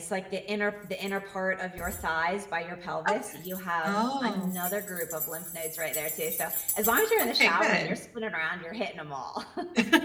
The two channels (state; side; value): identical; both; correlation 1.00